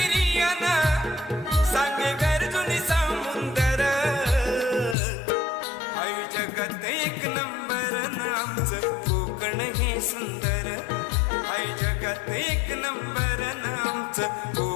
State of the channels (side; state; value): right; drops out; at 5.0 s